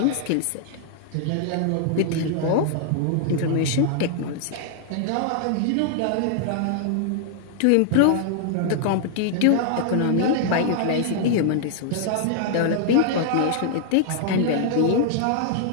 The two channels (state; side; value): different; both; correlation -0.01